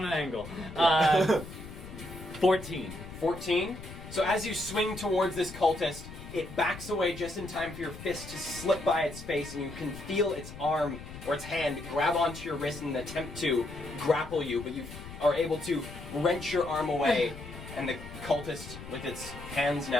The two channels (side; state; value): left; noise; rumble, 13 dB below the sound